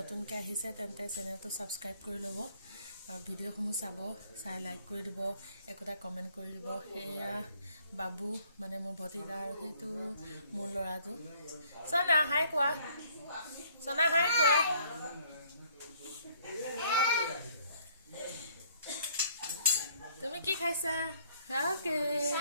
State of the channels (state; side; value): inverted; both; correlation -0.62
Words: আহিছে তেন্তে চেনেলটো ছাবস্ক্ৰাইব কৰি ল'ব আৰু ভিডিঅ'সমূহ চাই লাইক কৰি দিব, একোটা কমেণ্ট কৰি দিব। সেয়া বাবু মানে মোৰ ভতিজা আৰু সেইটো মোৰ ল'ৰাটো। চনা হাই কোৱা, চনা হাই কোৱা। তুমি কি খাইছা? অ'কে